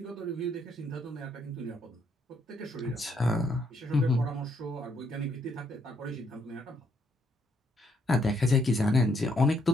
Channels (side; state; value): both; normal; correlation 0.72